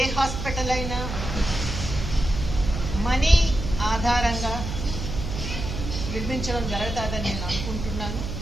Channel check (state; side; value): noise; right; hum, 5 dB below the sound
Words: హాస్పిటల్ అయినా మనీ ఆధారంగా నిర్మించడం జరుగుతుందని నేను అనుకుంటున్నాను.